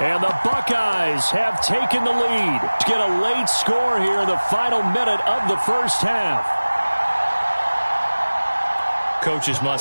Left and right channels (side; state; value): both; inverted; correlation -1.00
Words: the Buckeyes have taken the lead to get a late score here in the final minute of the first half. Coaches